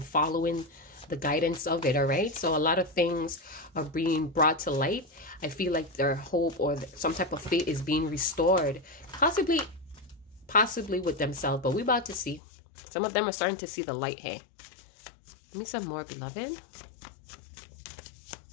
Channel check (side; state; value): right; drops out; at 12.4 s